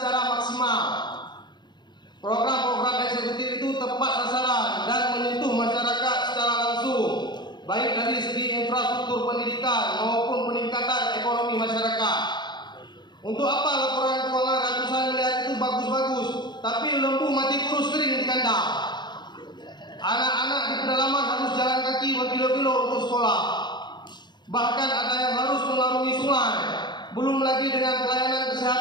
maksimal. Program-program eksekutif itu tepat sasaran dan menyentuh masyarakat secara langsung, baik dari segi infrastruktur pendidikan maupun peningkatan ekonomi masyarakat. Untuk apa laporan keuangan ratusan miliar itu bagus-bagus, tapi lembu mati kurus kering di kandang? Anak-anak di pedalaman harus jalan kaki berkilo-kilo untuk sekolah. Bahkan ada yang harus mengarungi sungai. Belum lagi dengan pelayanan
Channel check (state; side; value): late; right; 0.21 ms